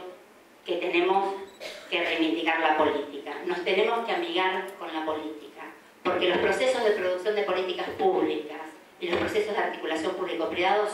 que tenemos que reivindicar la política. Nos tenemos que amigar con la política, porque los procesos de producción de políticas públicas y los procesos de articulación público-privado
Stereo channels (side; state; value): both; identical; correlation 1.00